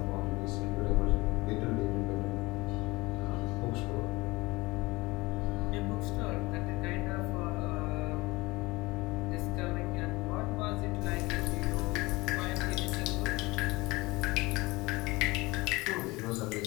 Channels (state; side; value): quieter; right; 22.3 dB